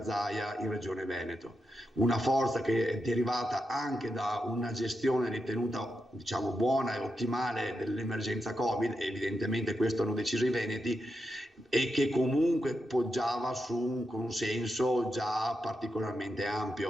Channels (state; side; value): normal; both; correlation 0.86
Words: Zaia in Regione Veneto, una forza che è derivata anche da una gestione ritenuta, diciamo, buona e ottimale dell'emergenza Covid, e evidentemente questo hanno deciso i veneti, e che comunque poggiava su un consenso già particolarmente